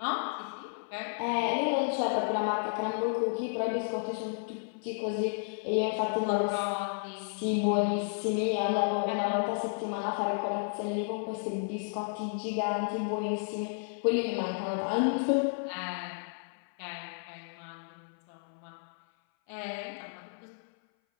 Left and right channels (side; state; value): right; silent; 56 dB below the other